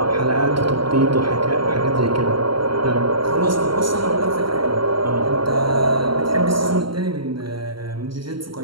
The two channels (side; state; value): left; late; 0.73 ms